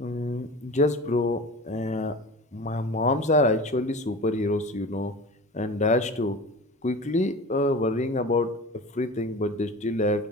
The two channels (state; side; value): normal; both; correlation 0.35